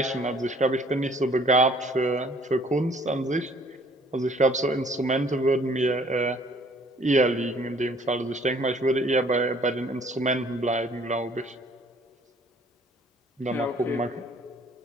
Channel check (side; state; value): both; normal; correlation 0.58